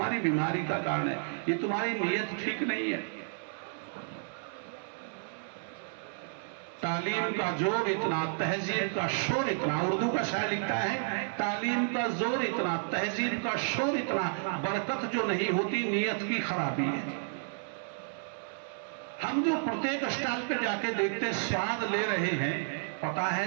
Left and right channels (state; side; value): silent; left; digital silence